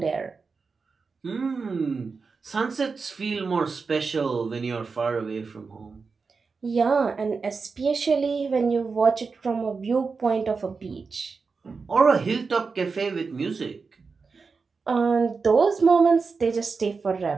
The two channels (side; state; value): left; quieter; 4.8 dB